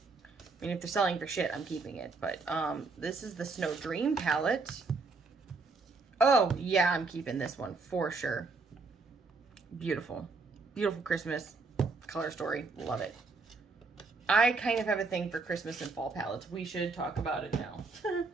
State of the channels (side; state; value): left; quieter; 4.0 dB